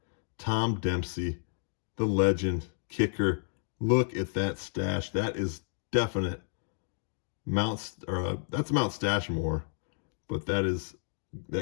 Tom Dempsey, the legend, kicker. Look at that stash. That is definite that's Mount Stashmore, but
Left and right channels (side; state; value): right; silent; digital silence